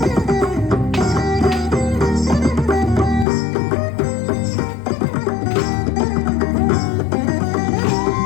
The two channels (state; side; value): drops out; right; at 3.2 s